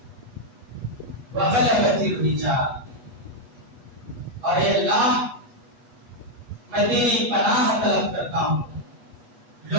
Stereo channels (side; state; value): left; late; 8.2 ms